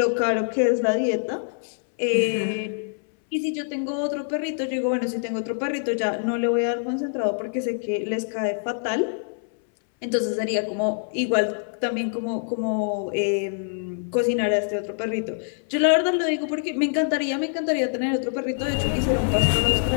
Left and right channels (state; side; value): silent; right; 62 dB below the other